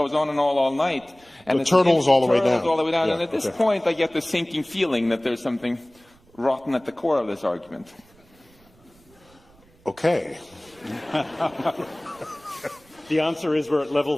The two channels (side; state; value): right; noise; rumble, 30 dB below the sound